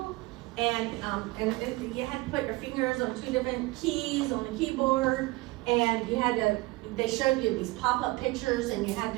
and you had to put your fingers on 2 different keys on the keyboard, and they showed you these pop-up pictures, and you had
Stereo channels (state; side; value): quieter; left; 21.5 dB